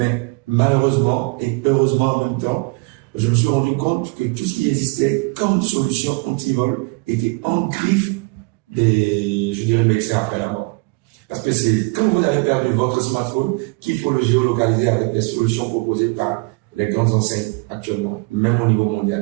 malheureusement et heureusement en même temps, je me suis rendu compte que tout ce qui existait comme solution anti-vol était en griffe des, je dirais, médecins après la mort. Parce que c'est quand vous avez perdu votre smartphone qu'il faut le géolocaliser avec les solutions proposées par les grandes enseignes actuellement, même au niveau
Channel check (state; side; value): quieter; left; 29.0 dB